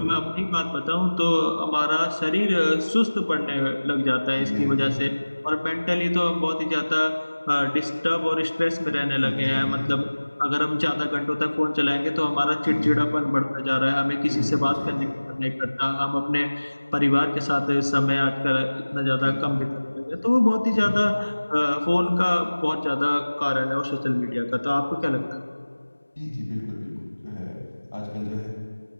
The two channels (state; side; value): inverted; both; correlation -1.00